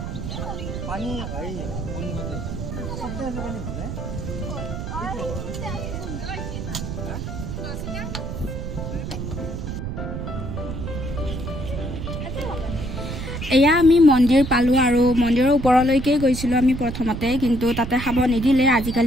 पानी भाई सबसे ऐसा पानी भले এয়া আমি মন্দিৰ পালো আৰু মন্দিৰৰ ওপৰলৈকে গৈছিলো আমি প্ৰথমতে কিন্তু তাতে খাব নিদিলে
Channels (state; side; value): noise; right; rumble, 6 dB below the sound